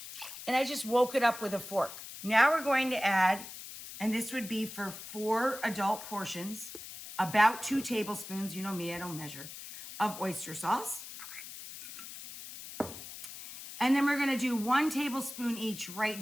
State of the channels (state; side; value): noise; left; hiss, 12 dB below the sound